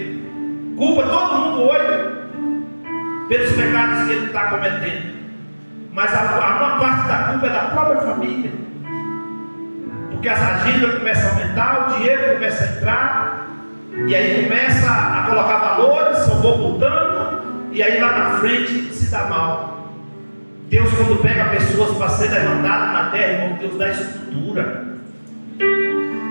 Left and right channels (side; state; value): both; inverted; correlation -1.00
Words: Culpa todo mundo hoje pelos pecados que ele está cometendo. Mas a maior parte da culpa é da própria família. Porque as agendas começam a aumentar, o dinheiro começa a entrar, e aí começa a colocar valores, só vou botando, e aí lá na frente se dá mal. Deus, quando pega pessoas para ser levantado na terra, irmão, Deus dá estrutura.